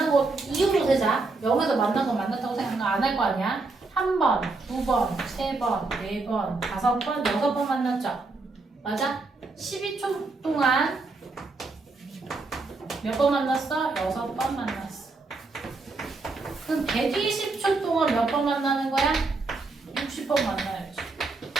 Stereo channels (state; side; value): quieter; left; 3.7 dB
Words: 거 이유로 세자. 0에서 만난 거 만났다고 생각 안 할 거 아니야? 한 번, 두 번, 세 번, 네 번, 다섯 번, 여섯 번 만났죠? 맞아? 12초 동안 몇 번 만났어? 여섯 번 만났어. 그럼 120초 동안 몇 번 만나는 거야? 60번 만나야지.